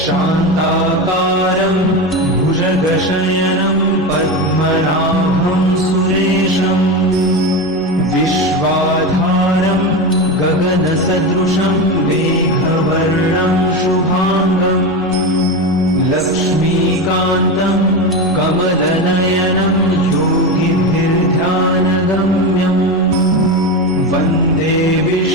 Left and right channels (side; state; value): both; normal; correlation 0.19